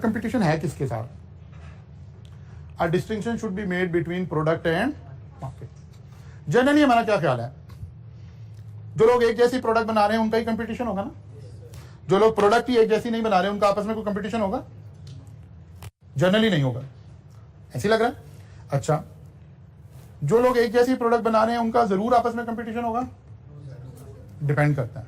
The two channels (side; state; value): both; identical; correlation 1.00